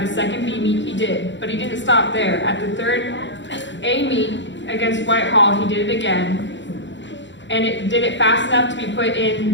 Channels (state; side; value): late; right; 0.54 ms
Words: second B meet he did, but he didn't stop there. At the third A meet against Whitehall, he did it again, and it did it fast enough to be put